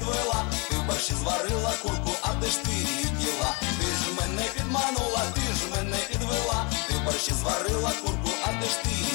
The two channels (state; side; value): quieter; right; 30.6 dB